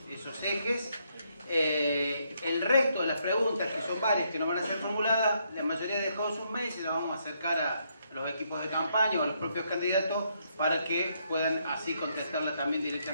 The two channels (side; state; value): both; inverted; correlation -0.75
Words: ejes. El resto de las preguntas, que son varias que nos van a ser formuladas, la mayoría ha dejado sus mails y las vamos a acercar a los equipos de campaña o a los propios candidatos para que puedan así contestarla también